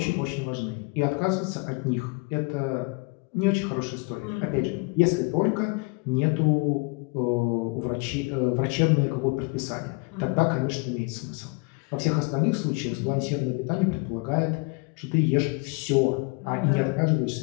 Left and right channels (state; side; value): quieter; right; 30.6 dB